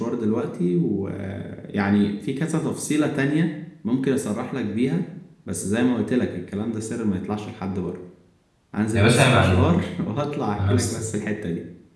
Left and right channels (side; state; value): both; identical; correlation 1.00